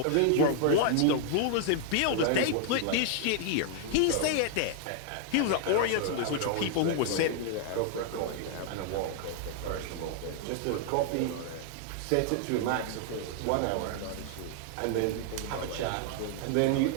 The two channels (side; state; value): both; different; correlation 0.00